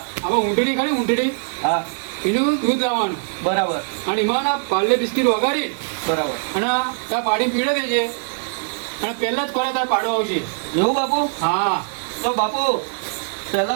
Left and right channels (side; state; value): left; silent; digital silence